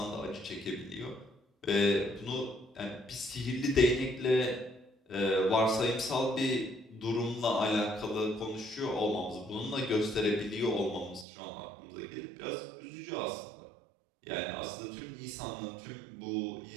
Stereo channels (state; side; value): drops out; left; at 11.2 s